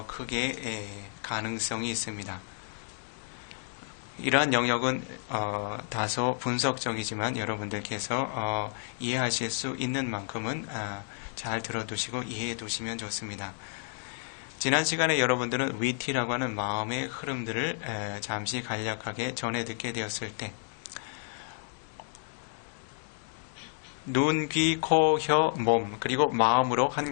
크게 가능성이 있습니다. 이러한 영역은 다소 분석적이지만 여러분들께서 이해하실 수 있는 만큼은 잘 들어두시고 이해해 두시면 좋습니다. 지난 시간에 여러분들은 위티라고 하는 마음의 흐름들을 잠시 간략하게 전해 듣게 되었을 때 눈, 귀, 코, 혀, 몸 그리고 마음으로 한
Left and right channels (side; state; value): right; silent; 57 dB below the other